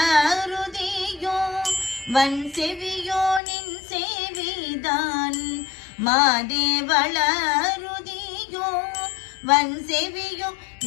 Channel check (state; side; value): drops out; right; at 3.4 s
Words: வன் செவியோ நின் சேவிதான். மாதே வளருதியோ வன் செவியோ